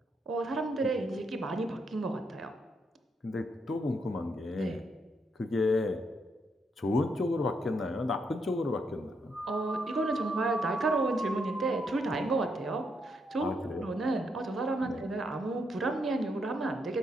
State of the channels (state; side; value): normal; both; correlation 0.78